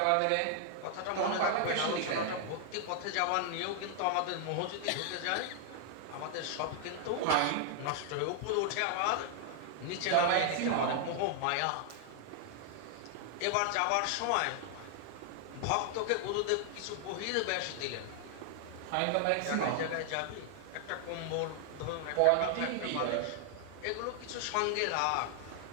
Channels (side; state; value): both; different; correlation 0.00